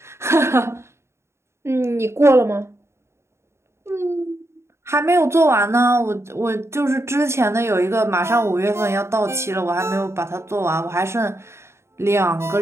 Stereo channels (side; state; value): left; late; 0.13 ms